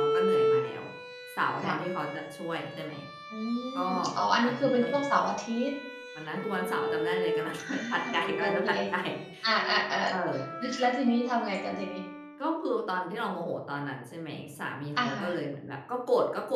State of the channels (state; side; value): identical; both; correlation 1.00